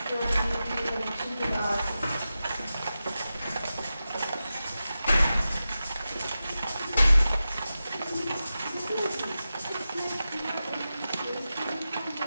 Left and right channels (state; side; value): inverted; both; correlation -0.93